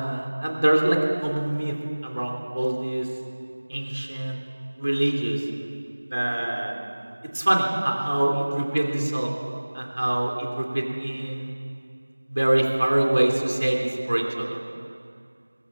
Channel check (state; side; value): inverted; both; correlation -1.00